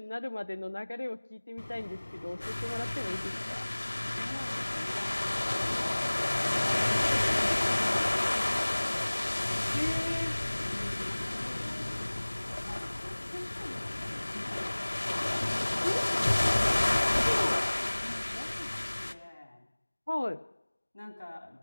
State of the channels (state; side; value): inverted; both; correlation -1.00